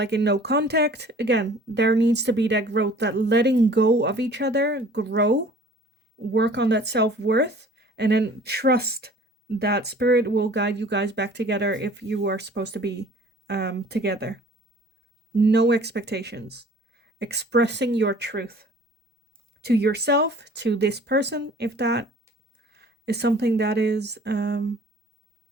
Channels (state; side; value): normal; both; correlation 0.50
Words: in no contact, again, there needs to be that growth, that letting go of each other, grow, work on that self-worth, and then trust that spirit will guide you guys back together if you are supposed to be together. No expectations. Expressing your truth to yourself, to this person, if that is something that is